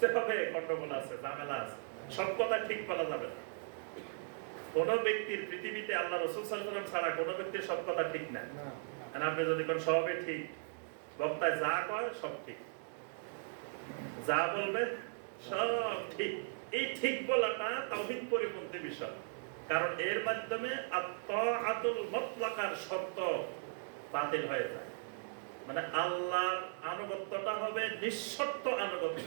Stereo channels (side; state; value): left; silent; digital silence